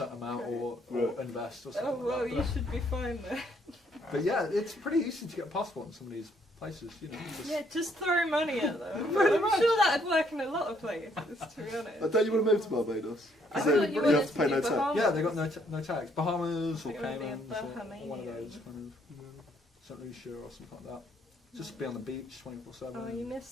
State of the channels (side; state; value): both; normal; correlation 0.68